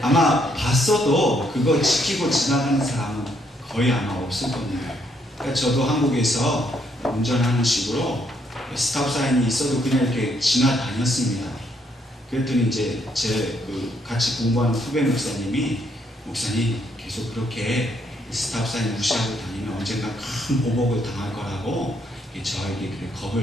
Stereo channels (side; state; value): both; normal; correlation 0.72